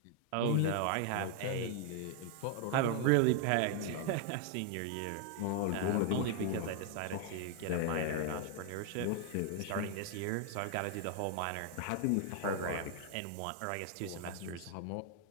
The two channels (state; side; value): different; both; correlation 0.00